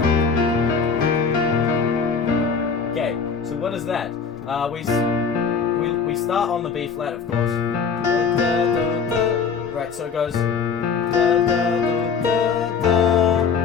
Okay, so what is that? We start on the B flat, of course. Right, so it goes.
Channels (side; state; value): right; quieter; 5.9 dB